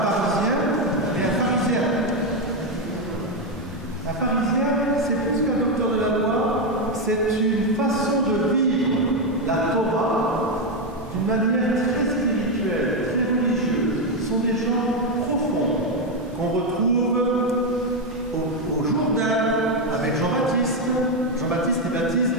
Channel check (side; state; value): both; normal; correlation 0.05